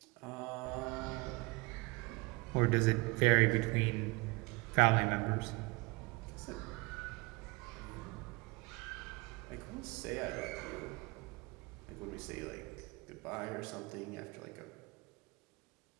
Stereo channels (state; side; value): quieter; left; 25.9 dB